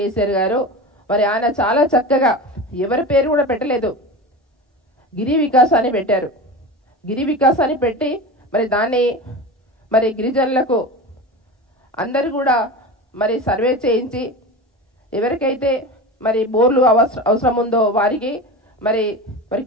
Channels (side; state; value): both; normal; correlation 0.28